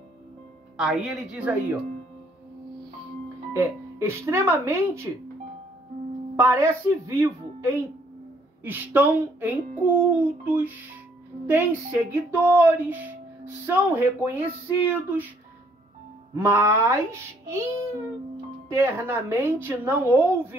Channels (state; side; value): normal; both; correlation 0.65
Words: Aí ele diz aí, ó. Extremamente parece vivo, estão em cultos, têm seguidores, são reconhecidos, mas internamente não